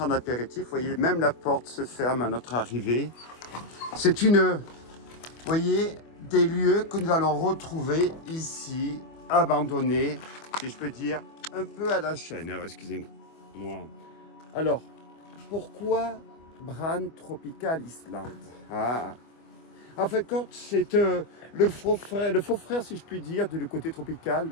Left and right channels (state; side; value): late; right; 25 ms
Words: en apéritif. Vous voyez, même la porte se ferme à notre arrivée. C'est vous voyez, des lieux que nous allons retrouver ici, abandonnés, si je peux dire, un peu à la chaîne. Alors, excusez-moi. Alors, pourquoi Bran Tropical Island? En fait, c'est le faux frère, si je puis dire, du côté tropical,